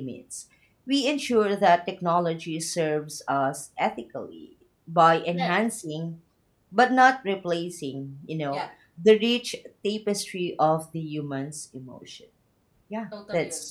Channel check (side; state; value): both; identical; correlation 1.00